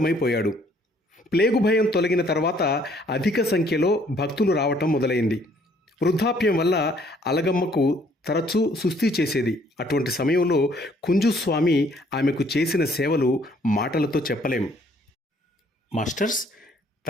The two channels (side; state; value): both; normal; correlation 0.62